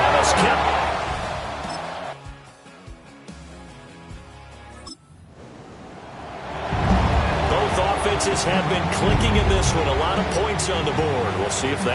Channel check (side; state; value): both; identical; correlation 1.00